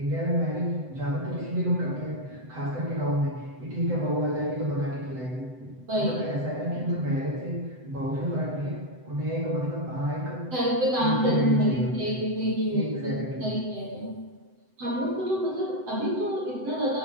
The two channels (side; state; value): left; late; 7.8 ms